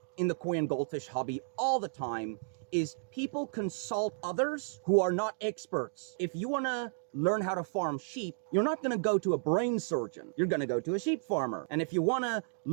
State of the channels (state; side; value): silent; left; digital silence